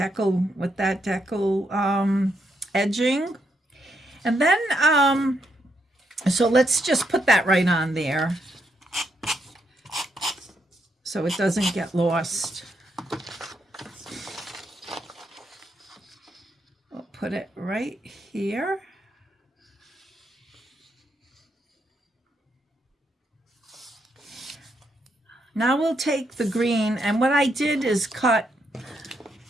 edging. And then so let's just put that right on there so it doesn't get lost. We'll put it right here. Now we'll take the green, and what I did is cut,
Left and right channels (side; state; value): both; normal; correlation 0.78